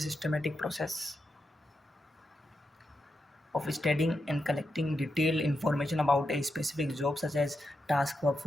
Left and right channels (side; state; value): both; normal; correlation 0.86